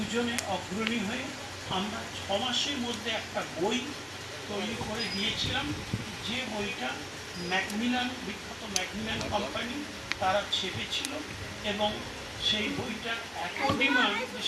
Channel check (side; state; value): both; identical; correlation 1.00